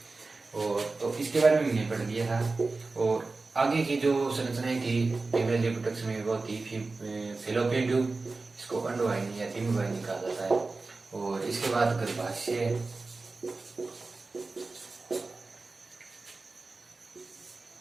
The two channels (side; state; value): left; quieter; 3.7 dB